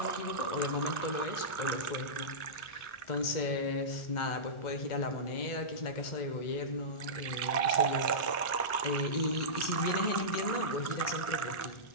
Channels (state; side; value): late; right; 1.4 ms